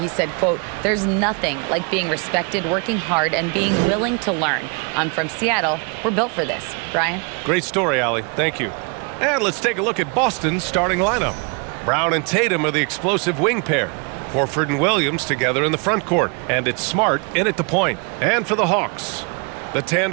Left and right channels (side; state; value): left; quieter; 34.4 dB